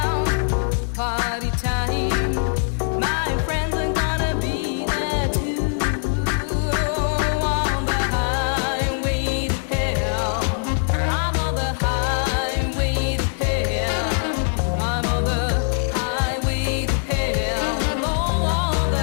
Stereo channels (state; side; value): silent; right; digital silence